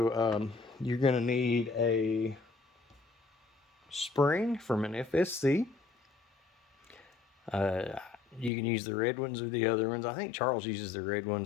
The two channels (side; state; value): right; drops out; at 8.5 s